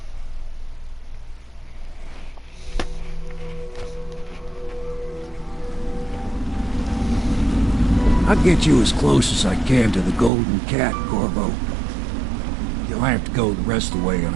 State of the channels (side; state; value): left; drops out; at 10.3 s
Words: I'll get you as close as I can to the Golden Cat, Corvo. You'll have to go the rest of the way